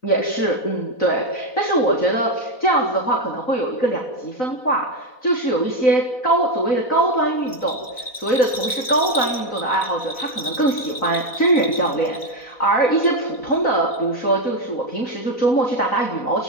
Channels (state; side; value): late; right; 4.0 ms